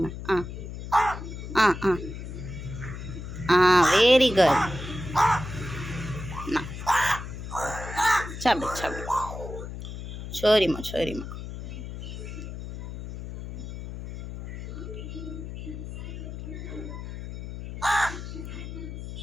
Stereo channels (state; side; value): noise; left; hum, 9 dB below the sound